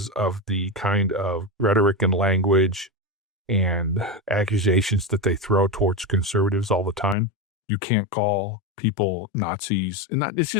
of the kind of rhetoric and language and accusations that they throw towards conservatives all the time. You can't call people Nazis, and it's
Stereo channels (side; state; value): right; drops out; at 7.2 s